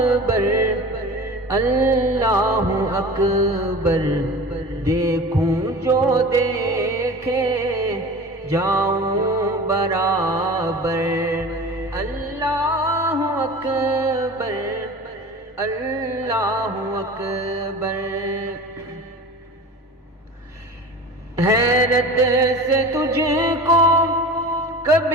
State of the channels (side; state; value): both; normal; correlation 0.36